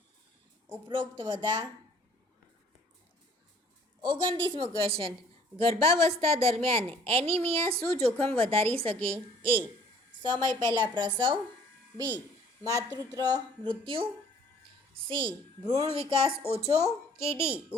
ઉપરોક્ત બધા. 29મો ક્વેશ્ચન, ગર્ભાવસ્થા દરમિયાન એનિમિયા શું જોખમ વધારી શકે? એ સમય પહેલાં પ્રસવ. બી માતૃત્વ મૃત્યુ. સી ભ્રૂણ વિકાસ ઓછો. કે ડી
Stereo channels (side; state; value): both; normal; correlation 0.56